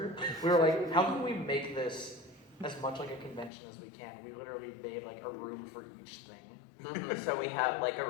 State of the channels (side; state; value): right; drops out; at 3.5 s